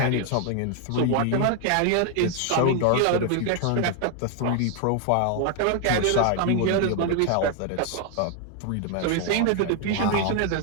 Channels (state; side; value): different; both; correlation 0.01